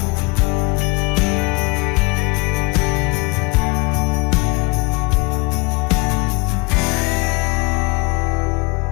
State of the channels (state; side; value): quieter; right; 26.7 dB